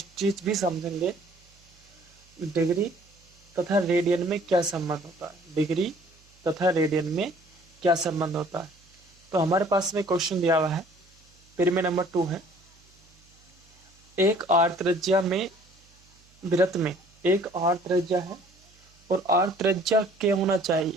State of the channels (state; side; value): noise; right; hum, 29 dB below the sound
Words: चीज भी समझेंगे, डिग्री तथा रेडियन में क्या संबंध होता है। डिग्री तथा रेडियन में क्या संबंध होता है। तो हमारे पास में क्वेश्चन दिया हुआ है, परिमेय नंबर 2 है। एक आर त्रिज्या में वृत्त में एक आर त्रिज्या है और आर त्रिज्या क्या होना